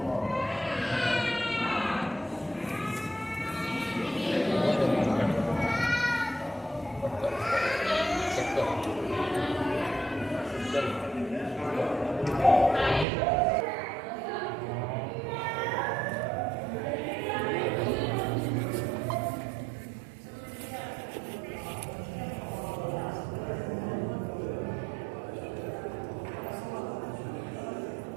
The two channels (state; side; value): drops out; left; at 13.1 s